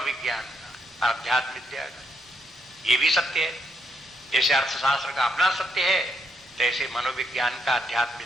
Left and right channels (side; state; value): both; normal; correlation 0.78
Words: का, अध्यात्म विद्या का। ये भी सत्य है, जैसे अर्थशास्त्र का अपना सत्य है तैसे मनोविज्ञान का, अध्यात्म